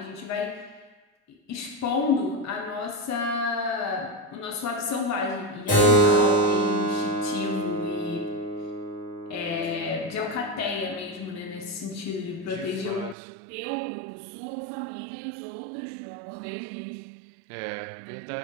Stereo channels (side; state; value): left; drops out; at 13.2 s